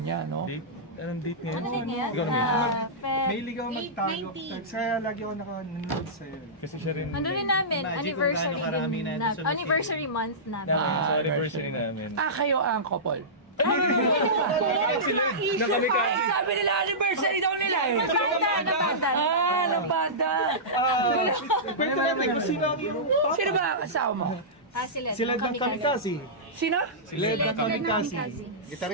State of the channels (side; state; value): both; normal; correlation -0.17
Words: no? Date? Anong date ngayon? Ano din yan? Ikaw na. Mahilig ako magtago. 8:90. Kaya lagi ako nanonood sa'yo. Kasi siya rin. Ano rin namin, Imagine kung anniversary gaano karami din na na, ito sa anniversary month namin. Sa anniversary namin. Kayo ang couple. Na kami ka. Ay, sabi nila, anniversary daw nila eh. Napanda. Napanda. Pwede natin kung sino ang iyong Sino ba ang asawa mo? Sila. Sila ng Kamikaze. Sino? Led ng Kamikaze.